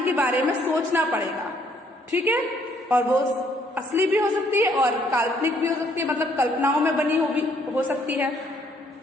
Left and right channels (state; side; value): normal; both; correlation 0.66